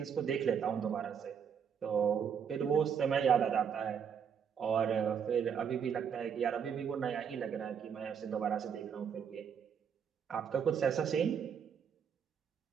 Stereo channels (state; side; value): quieter; left; 7.4 dB